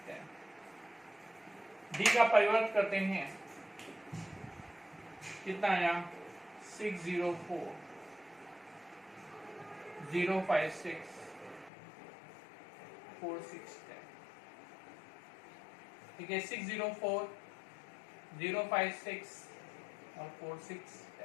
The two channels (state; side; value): drops out; right; at 11.7 s